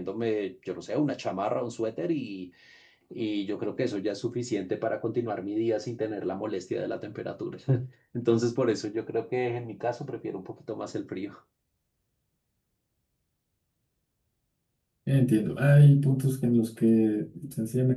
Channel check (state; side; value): identical; both; correlation 1.00